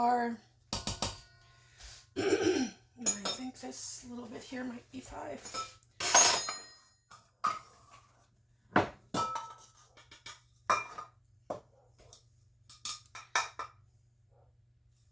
I think this little bit here might be 5.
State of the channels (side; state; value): both; identical; correlation 1.00